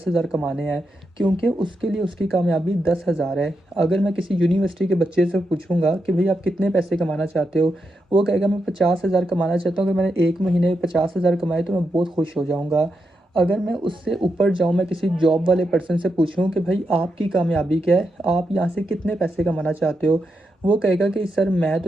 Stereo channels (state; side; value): normal; both; correlation 0.85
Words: कमाने हैं। क्योंकि उसके लिए उसकी कामयाबी 10,000 है। अगर मैं किसी यूनिवर्सिटी के बच्चे से पूछूँगा कि भई आप कितने पैसे कमाना चाहते हो? वो कहेगा मैं 50,000 कमाना चाहता हूँ, अगर मैंने 1 महीने में 50,000 कमाए तो मैं बहुत खुश हो जाऊँगा। अगर मैं उससे ऊपर जाऊँ, मैं किसी जॉब वाले पर्सन से पूछूँ कि भई आपकी कामयाबी क्या है? आप यहाँ से कितने पैसे कमाना चाहते हो? वो कहेगा कि सर मैं